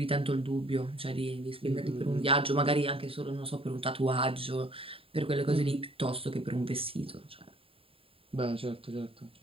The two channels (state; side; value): late; left; 0.27 ms